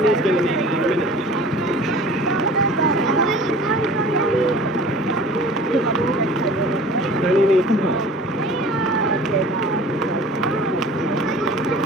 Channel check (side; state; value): both; normal; correlation 0.44